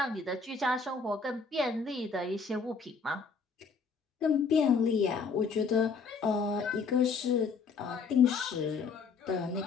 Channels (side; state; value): right; quieter; 5.0 dB